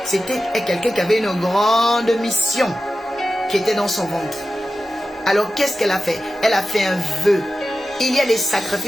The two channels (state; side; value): normal; both; correlation 0.93